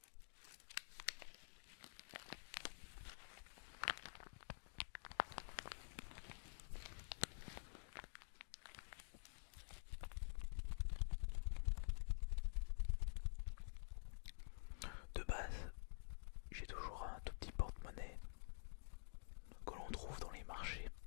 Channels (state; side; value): silent; right; digital silence